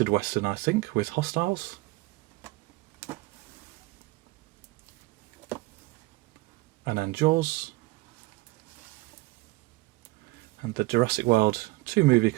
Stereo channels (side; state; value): left; quieter; 21.2 dB